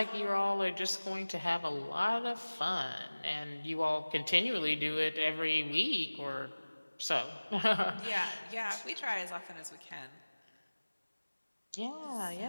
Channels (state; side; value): inverted; both; correlation -1.00